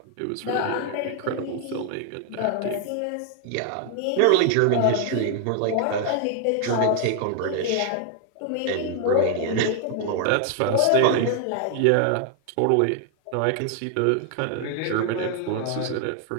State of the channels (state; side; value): different; both; correlation 0.00